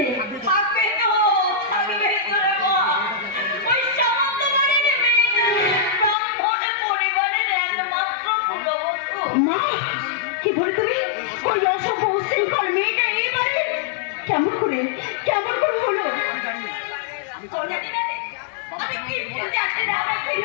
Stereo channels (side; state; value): right; drops out; at 6.2 s